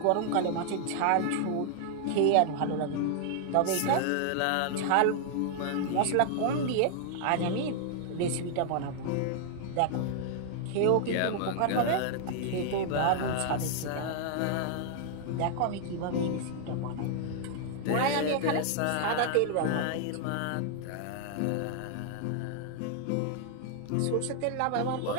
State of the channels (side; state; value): both; different; correlation -0.01